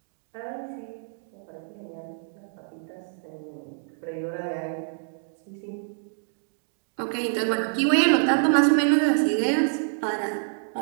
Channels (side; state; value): left; silent; digital silence